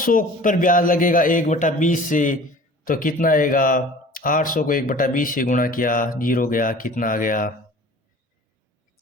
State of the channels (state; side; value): normal; both; correlation 0.44